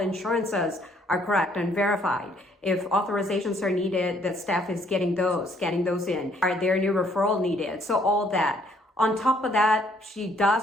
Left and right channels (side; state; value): both; normal; correlation 0.65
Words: are correct and verified. If authorizations are needed, the staff is getting those in. Are there new referral needed? So all that. On top of that, she